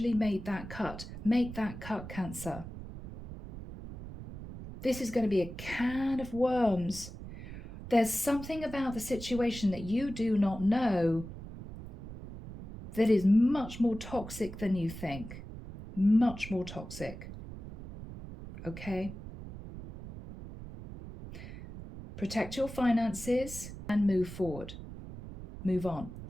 made that cut. Make that cut, Cancer. This is going to be a can of worms. There's something about the situation that you do not know that is much more toxic than you think. Much more toxic. Okay? Protect your finances and move forward. Move on.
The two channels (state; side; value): noise; right; rumble, 12 dB below the sound